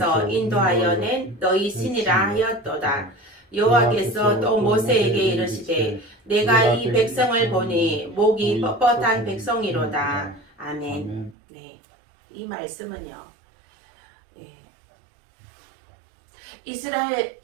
인도하여 낸 너희 신이라 하였도다. 여호와께서 또 모세에게 이르시되 내가 이 백성을 보니 목이 뻣뻣한 백성이로다. 아멘. 네, 이 말씀은요.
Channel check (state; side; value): drops out; left; at 11.4 s